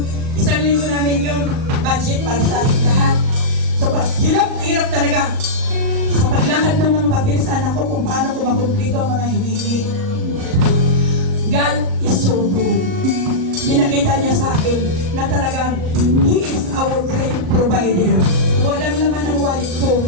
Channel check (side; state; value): left; late; 38 ms